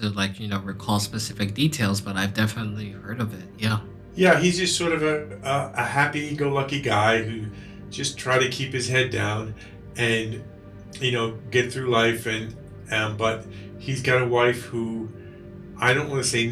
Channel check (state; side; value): identical; both; correlation 1.00